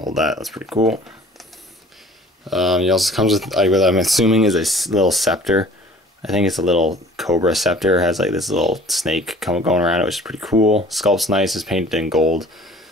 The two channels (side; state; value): both; normal; correlation 0.49